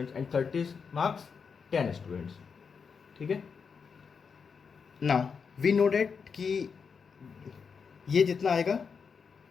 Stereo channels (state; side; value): quieter; right; 5.9 dB